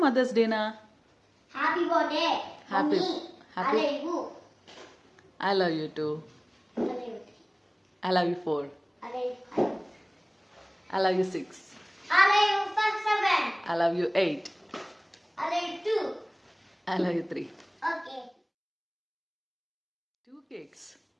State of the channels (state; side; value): identical; both; correlation 1.00